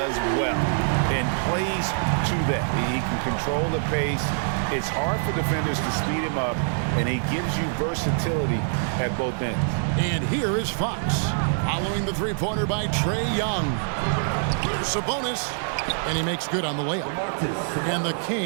well and plays to that. He can control the pace. It's hard for defenders to speed him up, and he gives you versatility at both ends. And here is Fox, following the three-pointer by Trae Young. Sabonis, and he makes good on the layup. And the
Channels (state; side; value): silent; left; 62 dB below the other